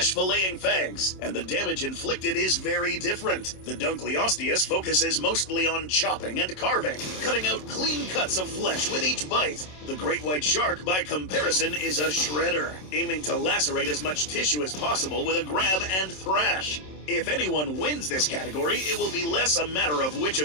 fangs, and the damage inflicted is very different. The Dunkleosteus focuses mostly on chopping and carving, cutting out clean cuts of flesh with each bite. The great white shark, by comparison, is a shredder, aiming to lacerate as much tissue as possible with a grab and thrash. If anyone wins this category, it will be less a matter of which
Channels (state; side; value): late; right; 27 ms